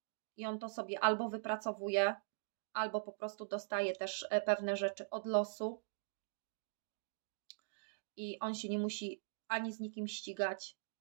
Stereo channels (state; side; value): silent; left; digital silence